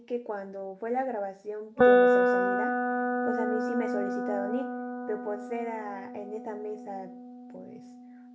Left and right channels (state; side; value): identical; both; correlation 1.00